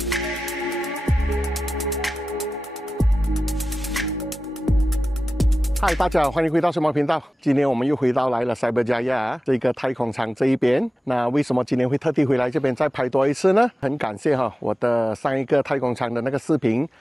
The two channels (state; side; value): normal; both; correlation 0.94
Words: 嗨，大家好，欢迎回到什么频道？今天我们又回到来了塞伯加亚这个太空舱这一边。那为什么今天会特地回来这边再拍多一次呢？很感谢我的上一个太空舱的那个视频